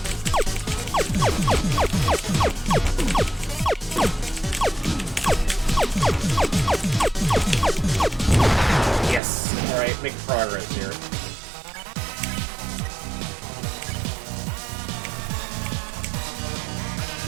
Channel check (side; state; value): left; drops out; at 9.2 s